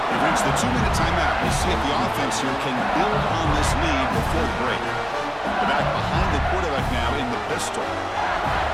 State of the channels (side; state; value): both; identical; correlation 1.00